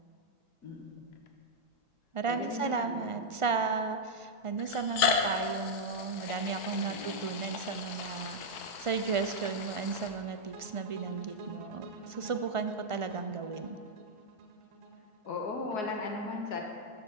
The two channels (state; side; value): late; left; 1.4 ms